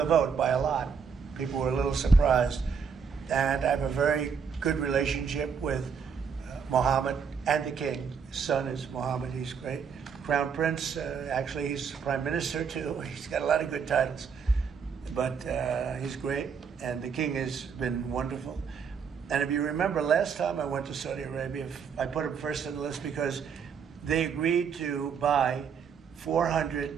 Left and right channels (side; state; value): left; quieter; 6.3 dB